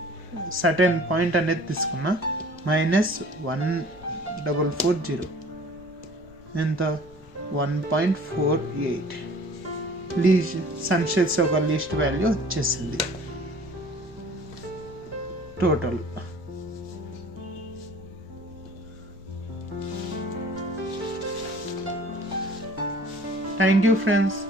సర్టెన్ పాయింట్ అనేది తీసుకున్నా -1440 ఎంత? 1.48. సన్షెట్స్ ఒక లీస్ట్ వాల్యూ వచ్చేసింది టోటల్. థ్యాంక్ యూ ఫ్రెండ్స్,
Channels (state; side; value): noise; left; rumble, 23 dB below the sound